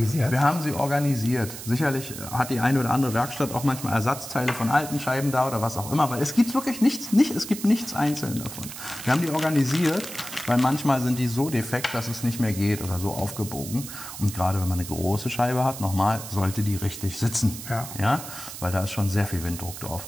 Wir haben sie organisiert. Sicherlich hat die eine oder andere Werkstatt auch manchmal Ersatzteile von alten Scheiben da oder was auch immer. Aber es gibt wirklich nichts, es gibt nichts einzeln davon. Wir haben die organisiert, weil manchmal sind die so defekt, dass es nicht mehr geht oder so aufgebogen. Und gerade wenn man eine große Scheibe hat, nochmal, sollte die richtig sitzen. Ja? Weil da ist schon sehr viel Winddruck drauf.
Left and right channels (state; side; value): noise; right; hiss, 11 dB below the sound